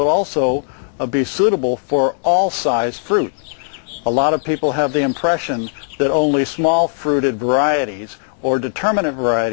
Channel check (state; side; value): silent; right; 67 dB below the other